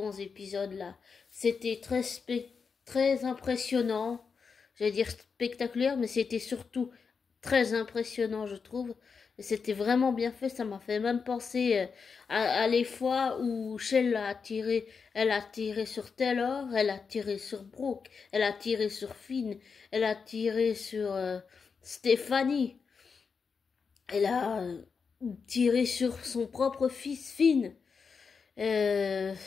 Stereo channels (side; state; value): right; quieter; 5.5 dB